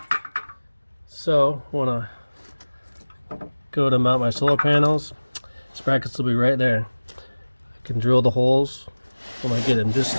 So, want to go to mount my solar panels. These brackets will be right there. I can drill the holes when I get them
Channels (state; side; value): inverted; both; correlation -1.00